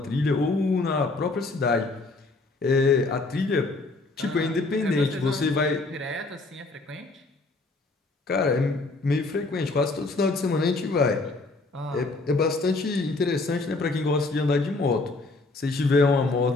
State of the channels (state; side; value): quieter; right; 3.3 dB